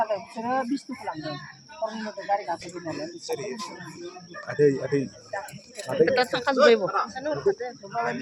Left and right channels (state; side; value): identical; both; correlation 1.00